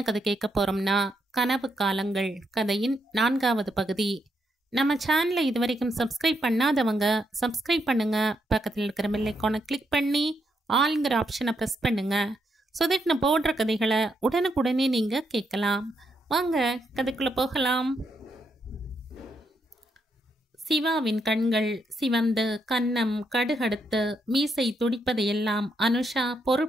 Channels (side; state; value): both; normal; correlation 0.79